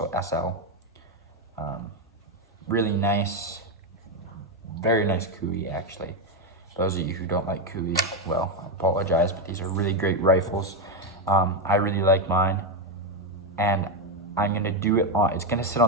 SL. Really nice, very nice Cooey, actually. Those of you who don't like Cooey, well, I apologize, but these are really great rifles. I really like mine, and I'm gonna do it on, it's gonna sit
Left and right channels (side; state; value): both; normal; correlation 0.07